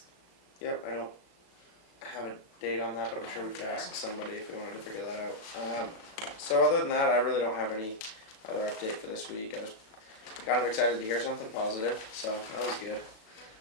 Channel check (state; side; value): late; right; 36 ms